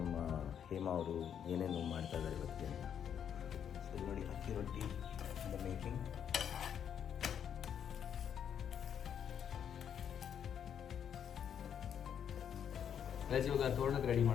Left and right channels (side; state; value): right; quieter; 8.5 dB